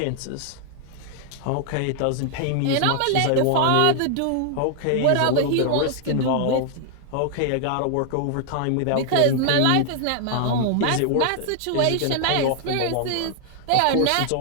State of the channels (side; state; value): both; different; correlation 0.00